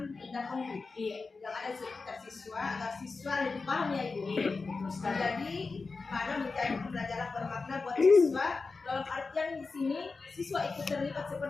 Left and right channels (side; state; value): right; quieter; 4.2 dB